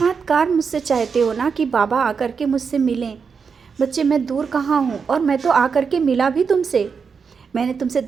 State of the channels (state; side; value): quieter; left; 5.8 dB